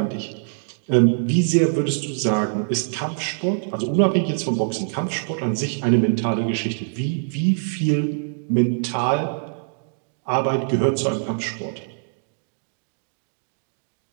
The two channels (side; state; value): left; silent; digital silence